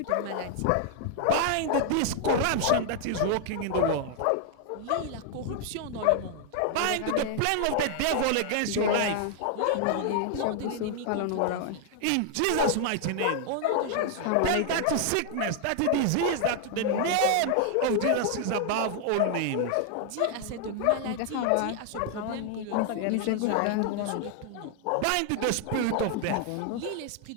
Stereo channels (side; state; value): both; different; correlation 0.00